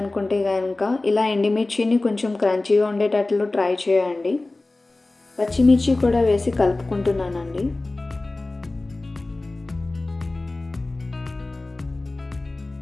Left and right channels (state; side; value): quieter; right; 3.0 dB